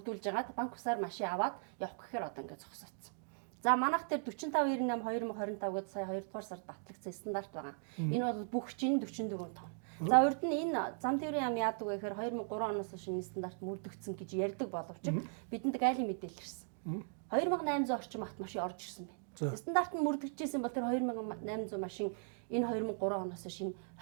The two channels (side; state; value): left; silent; 52 dB below the other